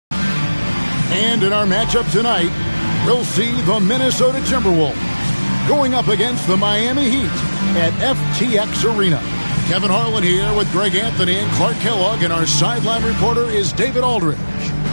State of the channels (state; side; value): inverted; both; correlation -1.00